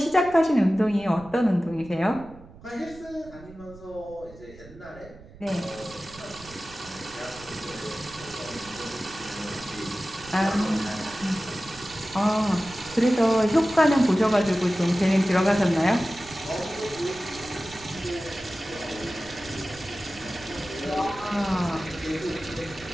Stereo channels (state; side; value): noise; right; rumble, 20 dB below the sound